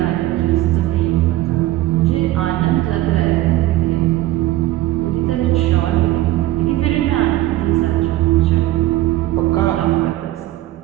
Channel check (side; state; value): left; quieter; 15.8 dB